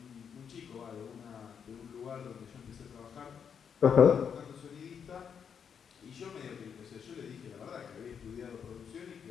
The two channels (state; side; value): quieter; right; 7.3 dB